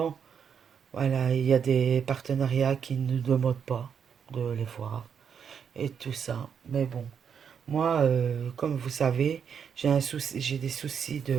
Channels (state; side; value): quieter; left; 7.3 dB